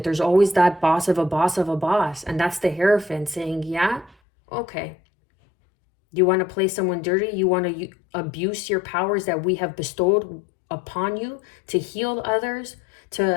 there's always that boss of a boss of a boss. And that's the Hierophant saying, yeah, okay. You want to play someone dirty? You want to abuse your powers that we have bestowed upon you to heal others,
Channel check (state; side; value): drops out; right; at 4.2 s